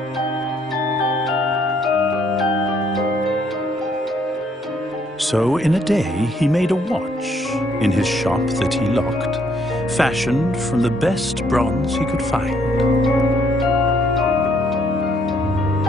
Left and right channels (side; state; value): both; normal; correlation 0.68